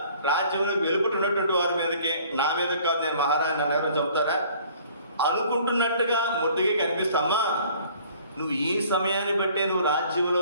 రాజ్యంలో వెలుపుతున్నటువంటి వారి మీదకి, నా మీద కాదు, నేను మహారాజు నన్ను ఎవరు చంపుతారా అనుకుంటున్నట్టుగా ముద్దుగా కనిపిస్తామా. నువ్వు ఈ సమయాన్ని బట్టే నువ్వు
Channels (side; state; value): both; inverted; correlation -0.54